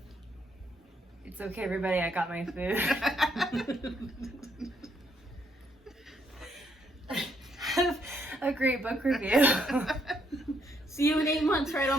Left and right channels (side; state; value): both; normal; correlation 0.73